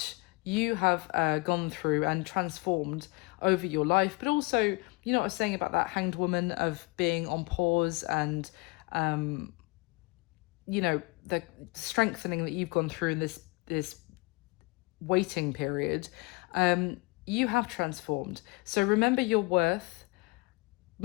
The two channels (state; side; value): quieter; right; 26.4 dB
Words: you have gone through and transformed over your life, but also, you know what I was saying about that Hanged Woman of being on pause and you know, the strengthening that you've gone through in this waiting period. You have transformed. So remember your worth.